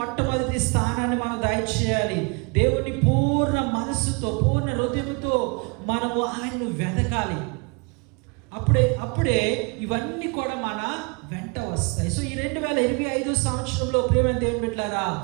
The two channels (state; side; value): quieter; left; 31.6 dB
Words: మొట్టమొదటి స్థానాన్ని మనం దయచేయాలి. దేవుని పూర్ణ మనస్సుతో, పూర్ణ హృదయంతో మనము ఆయనను వెతకాలి. అప్పుడే ఇవన్నీ కూడా మన వెంట వస్తాయి. సో ఈ 2025 సంవత్సరంలో ప్రియమైన దేవుని బిడ్డలారా,